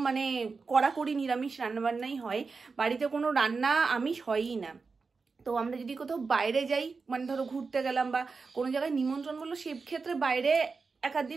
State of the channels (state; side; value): quieter; left; 4.6 dB